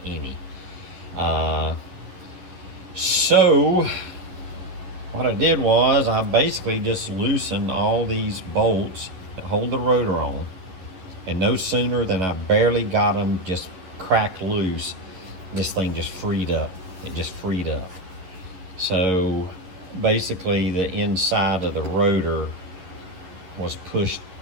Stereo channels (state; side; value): late; left; 11 ms